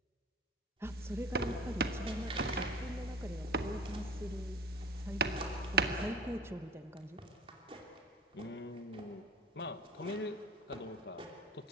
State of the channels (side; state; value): both; normal; correlation 0.41